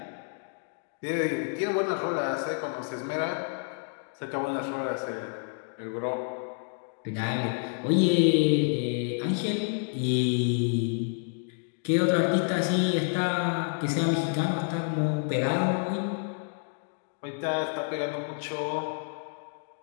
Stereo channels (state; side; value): silent; right; 59 dB below the other